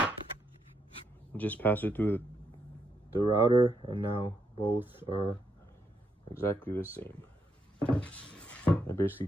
Just pass it through the router, and now both are exactly the same. I basically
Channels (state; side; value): normal; both; correlation 0.79